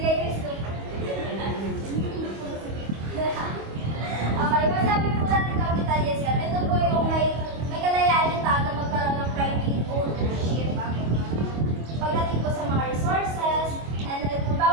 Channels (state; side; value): late; left; 25 ms